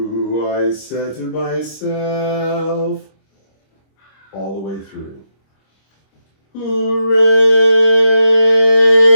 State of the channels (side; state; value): right; late; 26 ms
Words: I said to myself, all the way through.